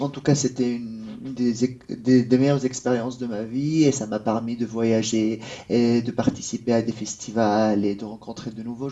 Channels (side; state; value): both; identical; correlation 1.00